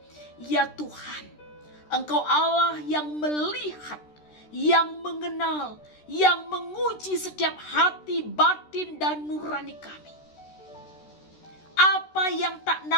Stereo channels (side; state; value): right; late; 13 ms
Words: Ya Tuhan, Engkau Allah yang melihat, yang mengenal, yang menguji setiap hati, batin, dan nurani kami. Apa yang tak